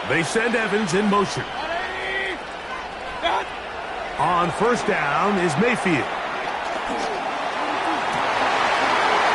They send Evans in motion. On 1st down is Mayfield.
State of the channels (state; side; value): identical; both; correlation 1.00